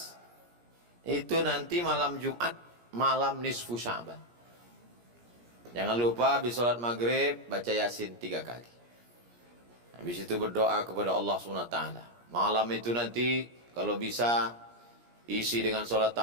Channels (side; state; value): left; late; 17 ms